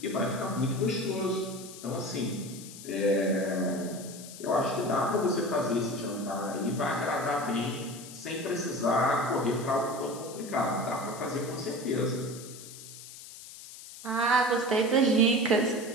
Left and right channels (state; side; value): noise; left; hiss, 15 dB below the sound